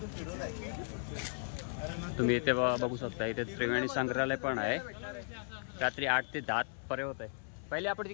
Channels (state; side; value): silent; right; 54 dB below the other